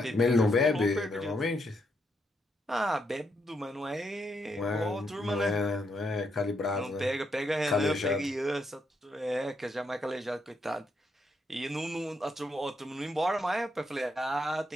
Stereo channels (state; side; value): normal; both; correlation 0.78